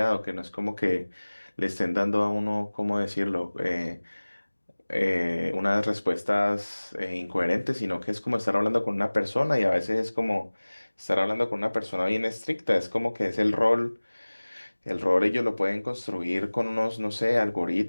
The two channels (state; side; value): inverted; both; correlation -1.00